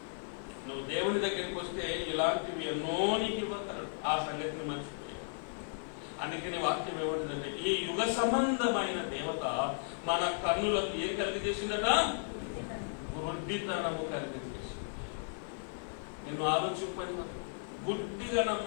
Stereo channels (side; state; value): right; silent; 54 dB below the other